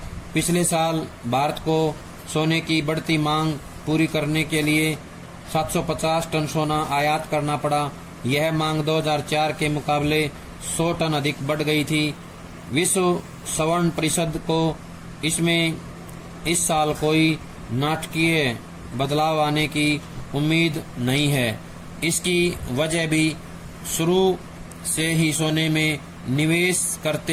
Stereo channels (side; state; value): both; identical; correlation 1.00